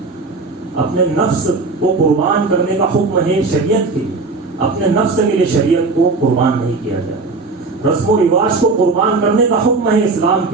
اپنے نفس کو قربان کرنے کا حکم ہے شریعت کے لیے، اپنے نفس کے لیے شریعت کو قربان نہیں کیا جائے. رسم و رواج کو قربان کرنے کا حکم ہے اسلام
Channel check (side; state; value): left; quieter; 3.8 dB